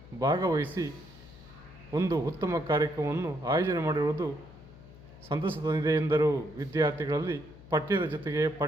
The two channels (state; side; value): noise; left; hum, 19 dB below the sound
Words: ಭಾಗವಹಿಸಿ ಒಂದು ಉತ್ತಮ ಕಾರ್ಯಕ್ರಮವನ್ನು ಆಯೋಜನೆ ಮಾಡಿರುವುದು ಸಂತಸ ತಂದಿದೆ ಎಂದರು. ವಿದ್ಯಾರ್ಥಿಗಳಲ್ಲಿ ಪಠ್ಯದ ಜೊತೆಗೆ